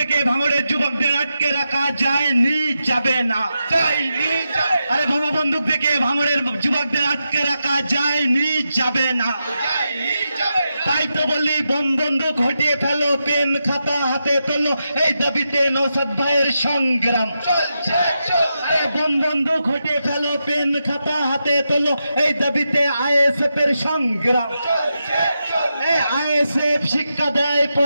ভাঙড়ের যুবকদের আটকে রাখা যায়নি, যাবে না। আরে বোমা বন্দুক দেখে ভাঙড়ের যুবকদের আটকে রাখা যায়নি, যাবে না। তাই তো বলি বোম বন্দুক হটিয়ে ফেলো, পেন খাতা হাতে তোলো, এই দাবিতে নওশাদ ভাইয়ের সংগ্রাম চলছে। বোম বন্দুক হটিয়ে ফেলো, পেন খাতা হাতে তোলো, এই দাবিতে আইএসএফ এর সংগ্রাম চলছে। আইএসএফ শিক্ষা দেয়,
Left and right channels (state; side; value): inverted; both; correlation -0.87